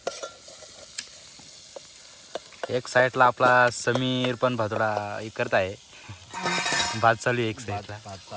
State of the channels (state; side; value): identical; both; correlation 1.00